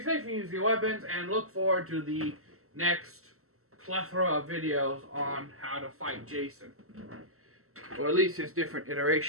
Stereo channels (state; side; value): late; left; 0.63 ms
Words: safe and use your weapons, and look forward to the next plethora of videos on how to fight Jason. Or at least his different